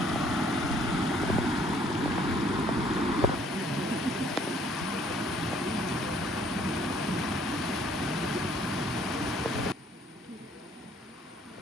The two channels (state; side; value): normal; both; correlation 0.62